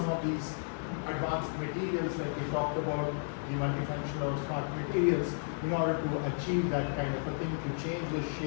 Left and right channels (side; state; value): right; silent; digital silence